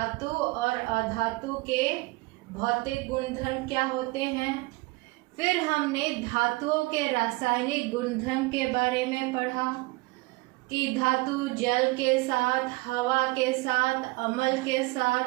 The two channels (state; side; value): quieter; left; 23.5 dB